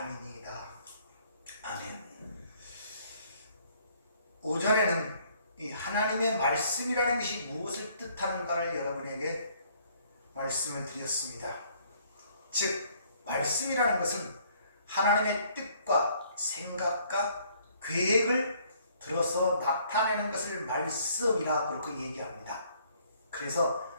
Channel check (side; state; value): both; inverted; correlation -0.63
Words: 아멘. 오전에는 이 하나님의 말씀이라는 것이 무엇을 뜻하는가를 여러분에게 말씀을 드렸습니다. 즉 말씀이라는 것은 하나님의 뜻과 생각과 계획을 들어서 나타내는 것을 말씀이라고 그렇게 얘기합니다. 그래서